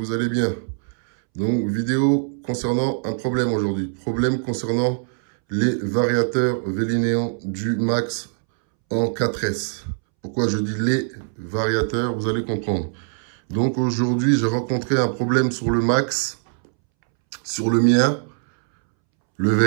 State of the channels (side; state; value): left; silent; 64 dB below the other